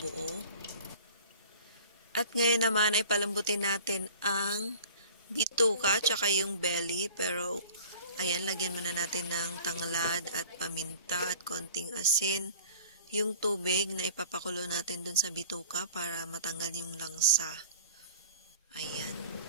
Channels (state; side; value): inverted; both; correlation -0.46